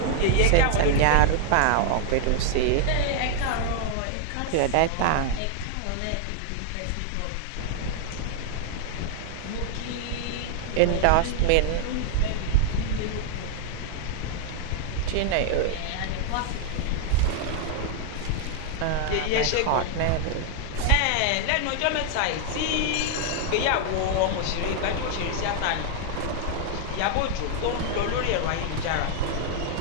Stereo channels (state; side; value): different; both; correlation 0.00